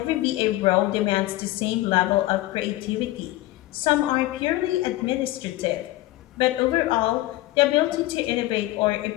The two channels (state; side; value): quieter; right; 17.5 dB